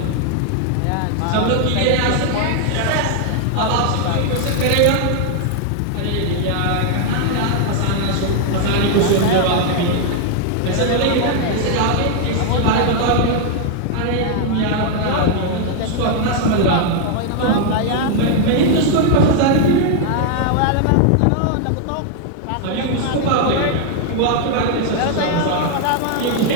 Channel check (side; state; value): both; different; correlation 0.00